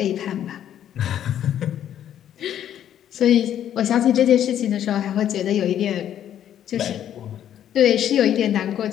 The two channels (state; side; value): quieter; right; 10.5 dB